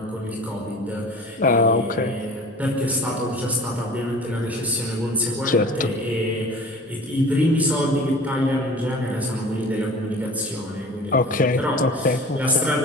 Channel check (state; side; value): normal; both; correlation 0.42